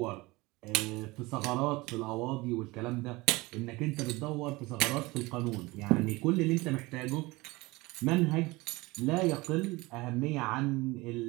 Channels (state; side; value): quieter; left; 22.2 dB